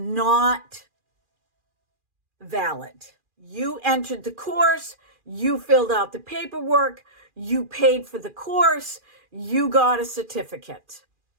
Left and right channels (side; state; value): left; late; 2.4 ms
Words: valid. You entered the course, you filled out the paperwork, you paid for the course, you got a certificate.